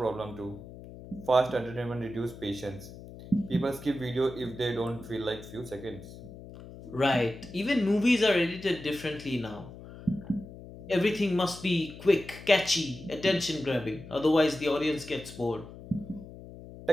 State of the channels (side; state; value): left; noise; hum, 15 dB below the sound